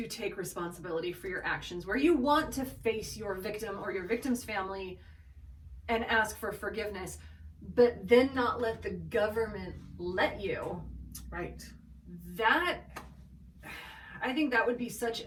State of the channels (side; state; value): both; identical; correlation 1.00